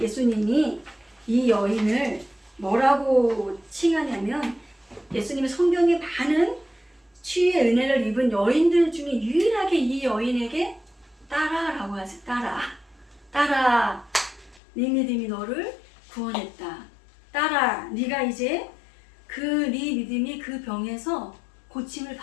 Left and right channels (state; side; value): drops out; right; at 14.6 s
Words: 이 여인을 뭐라고 칭하냐면 예수님이 성경에 많은 치유의 은혜를 입은 여인들 중에 유일하게 이 여인에게 따라라고 하세요. 따라 네 믿음이 너를 구원했다. 따라 네가 이제 네 믿음이 그 병에서 고침을